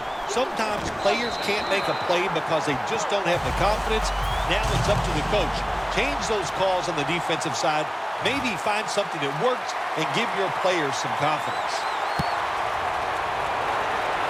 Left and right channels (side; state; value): both; identical; correlation 1.00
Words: sometimes players can't make a play because they just don't have the confidence. Now it's up to the coach. Change those calls on the defensive side. Maybe find something that works and give your players some confidence.